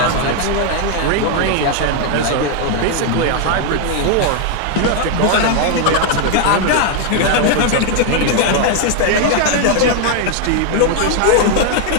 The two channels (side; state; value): both; different; correlation 0.00